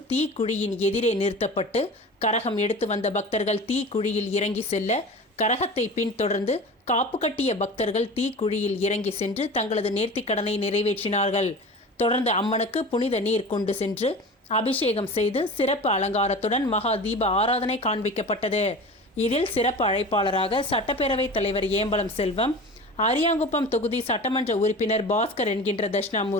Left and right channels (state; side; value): normal; both; correlation 0.35